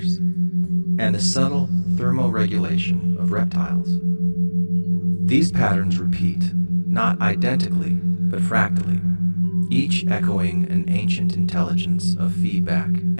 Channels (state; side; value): inverted; both; correlation -1.00